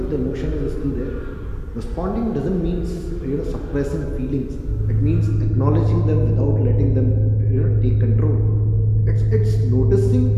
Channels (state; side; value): identical; both; correlation 1.00